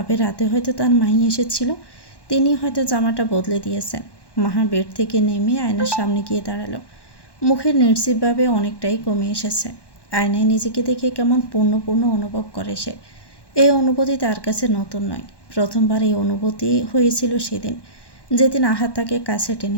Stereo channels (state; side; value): late; right; 1.1 ms